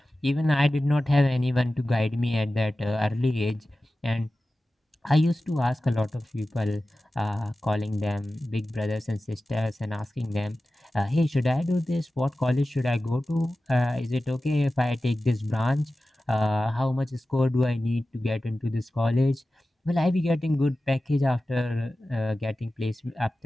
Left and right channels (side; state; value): both; normal; correlation 0.95